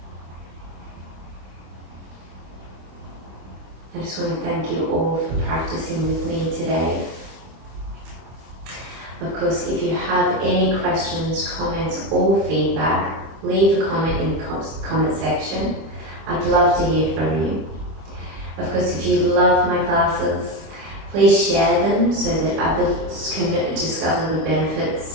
I just want to thank you all for practicing with me today. Of course, if you have any questions, comments or feedback, leave a comment in the comment section. I'd love to hear from you. Of course, if you love my classes, please share them so that others can discover the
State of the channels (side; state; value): left; late; 25 ms